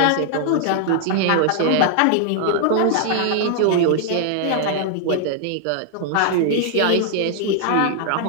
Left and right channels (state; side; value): different; both; correlation 0.00